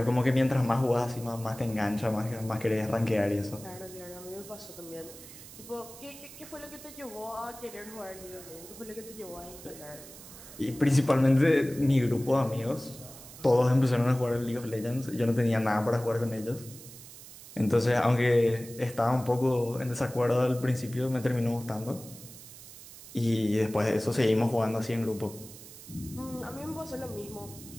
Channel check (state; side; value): noise; right; hiss, 17 dB below the sound